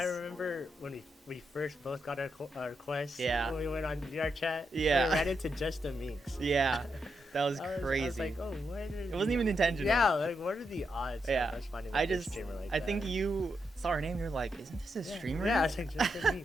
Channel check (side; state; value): both; normal; correlation 0.83